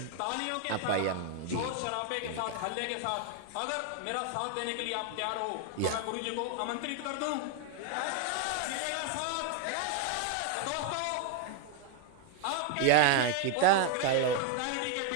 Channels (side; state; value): both; different; correlation 0.01